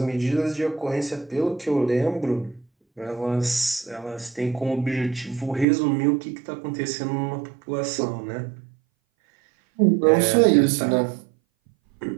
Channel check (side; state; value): left; drops out; at 5.7 s